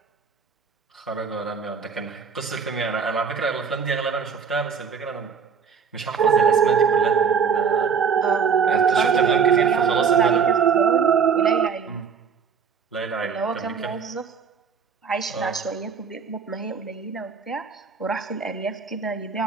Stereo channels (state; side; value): quieter; left; 6.4 dB